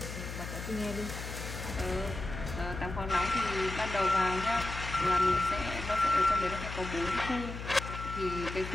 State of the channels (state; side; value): noise; left; hum, 8 dB below the sound